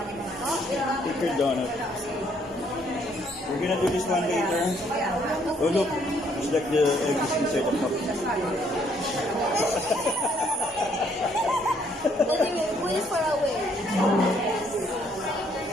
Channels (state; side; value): normal; both; correlation 0.67